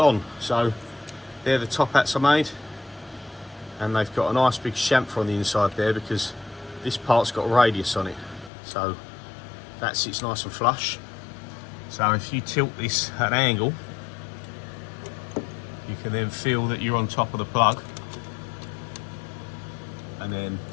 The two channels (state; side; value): drops out; right; at 8.5 s